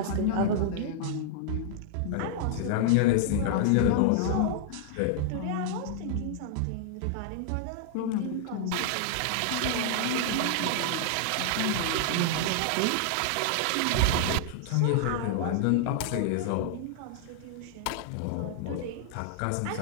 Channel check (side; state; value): both; different; correlation -0.01